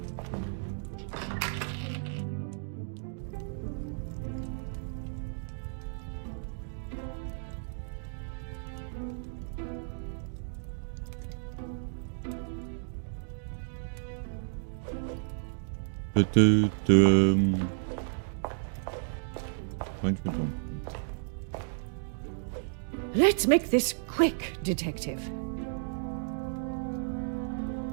Bądźmy tu. Let's make this quick, detective.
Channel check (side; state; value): left; silent; digital silence